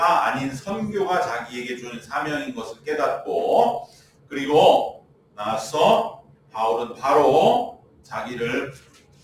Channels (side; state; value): both; identical; correlation 1.00